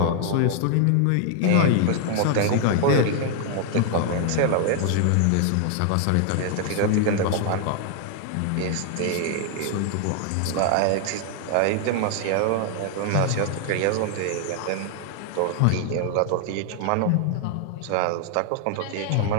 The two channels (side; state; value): both; different; correlation 0.00